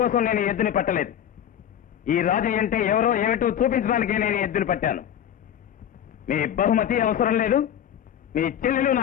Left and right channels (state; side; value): quieter; right; 9.9 dB